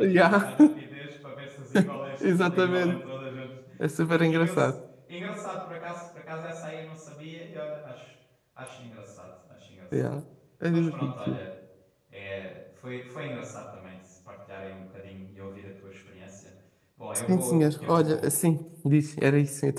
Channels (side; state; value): both; identical; correlation 1.00